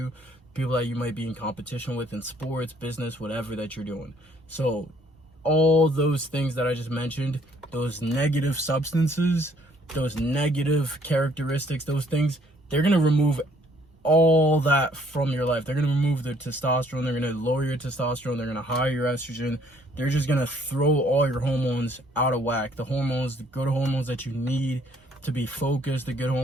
people that you might be in competition with in sports, business, whatever that you're doing. So all those things that I just mentioned, those negative substances, those negative characteristics, those things, they're going to remove all that from your life. They're going to remove the testosterone. They're going to lower your testosterone. They're going to higher your estrogen. They're just going to throw all your hormones out of whack. The good hormones that you need to be focused, the good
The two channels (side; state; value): both; normal; correlation 0.62